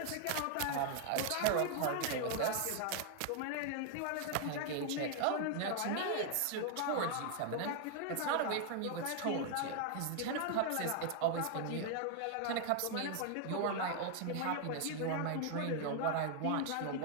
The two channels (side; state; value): both; different; correlation 0.00